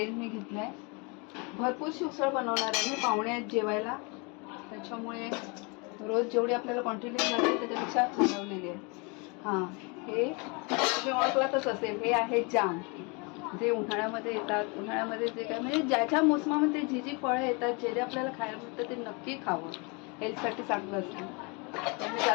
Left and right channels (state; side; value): quieter; right; 30.8 dB